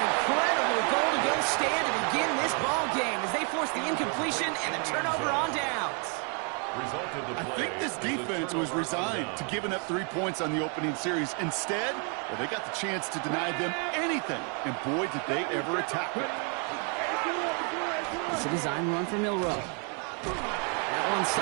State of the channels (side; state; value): left; quieter; 37.0 dB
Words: incredible goal-to-go stand to begin this ball game as they force the incompletion and the turnover on downs. I think this defense was resigned to giving up 3 points on the opening series. Instead, well, they got the chance to deny them anything, and boy, did they ever attack it. It's a design run for Milrow. That one